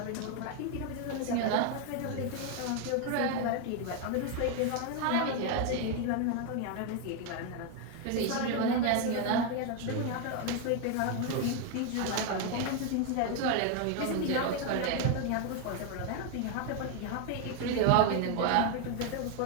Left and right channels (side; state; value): both; different; correlation 0.01